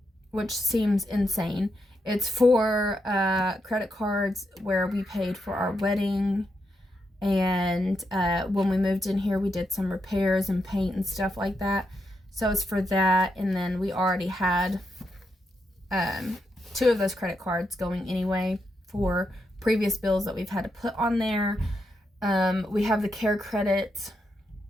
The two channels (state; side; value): normal; both; correlation 0.82